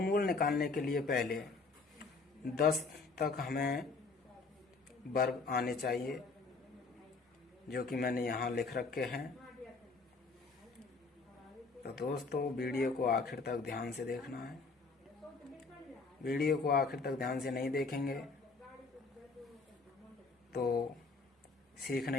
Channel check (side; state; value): right; quieter; 4.1 dB